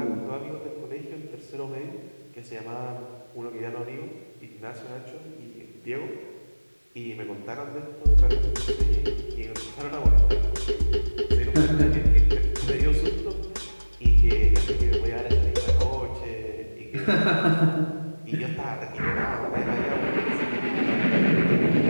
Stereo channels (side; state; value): both; inverted; correlation -1.00